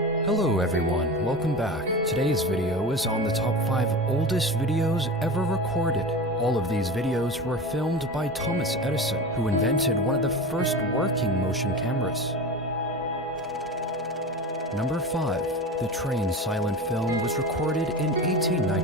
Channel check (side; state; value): both; normal; correlation 0.29